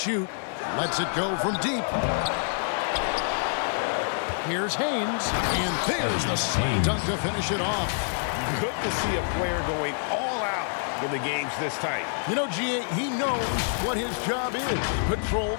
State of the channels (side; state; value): right; silent; 60 dB below the other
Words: Lets it go from deep. Here's Haynes, and there's the slam dunk to finish it off. Good to see a player going all out when the game's this tight. You know, G.A., he knows what his job is. Control